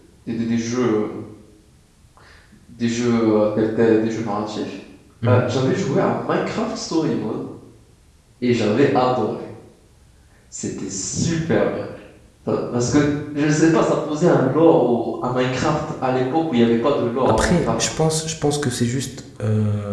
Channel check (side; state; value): both; identical; correlation 1.00